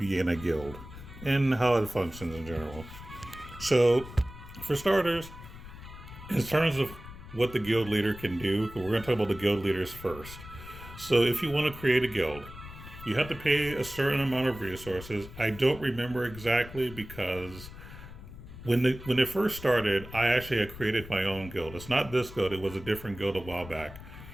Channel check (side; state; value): left; noise; rumble, 15 dB below the sound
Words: in a guild and how it functions in general. So, for starters, in terms of what the guild leader can do, we're going to talk about the guild leaders first. So, if you want to create a guild, you have to pay a certain amount of resources. I don't remember exactly because when it first started, I actually had created my own guild. It's not this guild; it was a different guild a while back,